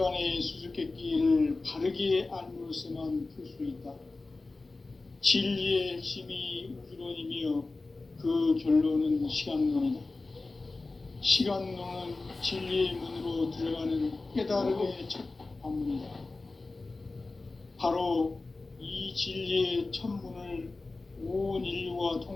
수수께끼를 바르게 알므로서만 풀 수 있다. 진리의 핵심이 우주론이며 그 결론은 시간론이다. 시간론은 진리의 문으로 들어가는 깨달음의 첫 관문이다. 바로 이 진리의 첫 문을 온 인류가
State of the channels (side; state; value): right; quieter; 3.4 dB